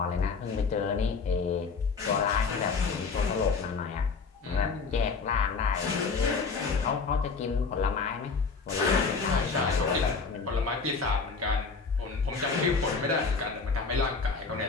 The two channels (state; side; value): quieter; right; 4.8 dB